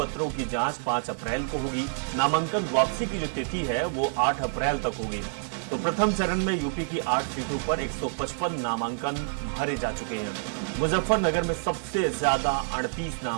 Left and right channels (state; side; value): silent; left; 60 dB below the other